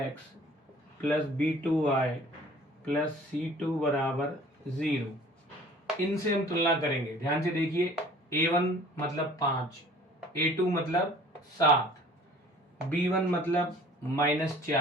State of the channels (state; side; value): normal; both; correlation 0.50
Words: + b2y + c2 = 0। इनसे हम तुलना करेंगे। ध्यान से देखिए, a1 मतलब 5, a2 मतलब 7, b1 मतलब